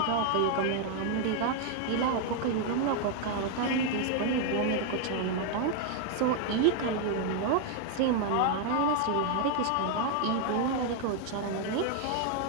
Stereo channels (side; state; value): both; different; correlation 0.00